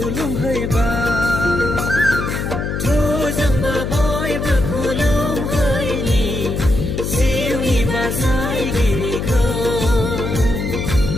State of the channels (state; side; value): noise; left; hum, 3 dB below the sound